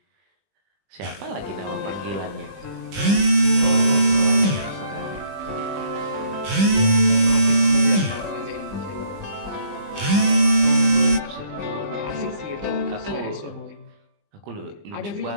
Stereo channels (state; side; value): late; left; 20 ms